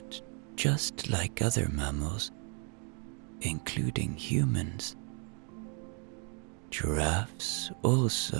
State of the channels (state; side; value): quieter; left; 38.5 dB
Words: just like other mammals, including humans, giraffes